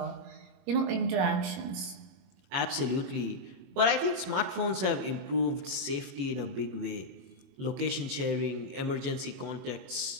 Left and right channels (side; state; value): left; late; 21 ms